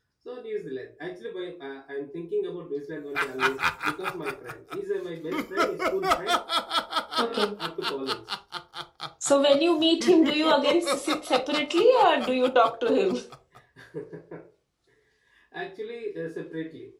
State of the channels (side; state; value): both; identical; correlation 1.00